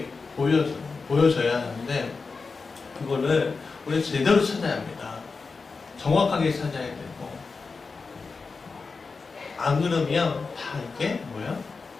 보여줘야 하는데 그거를 우리 제대로 찾아야 합니다. 정확하게 찾아야 되고 안 그러면 다 이게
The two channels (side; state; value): right; quieter; 4.5 dB